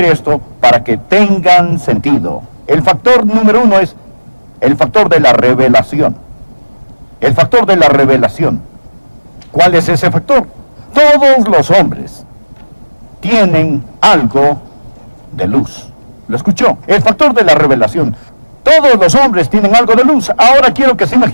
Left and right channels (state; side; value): inverted; both; correlation -1.00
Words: esto para que tengan sentido. El factor número 1 es el factor de la revelación. El factor de la revelación. ¿Cuál es ese factor? Todos los hombres tienen algo de luz. ¿Lo escuchó? El factor de la revelación. Todos los hombres tienen algo de luz. Ahora quiero que se